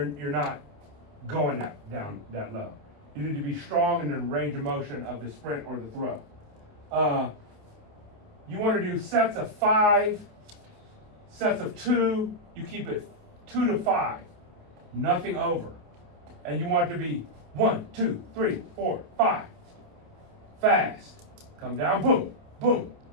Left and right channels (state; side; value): late; left; 28 ms